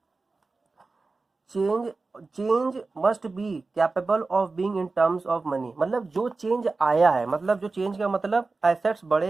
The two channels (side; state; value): left; quieter; 3.8 dB